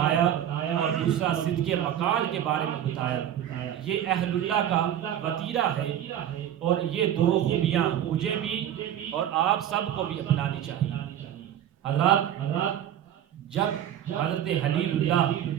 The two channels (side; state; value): left; quieter; 10.7 dB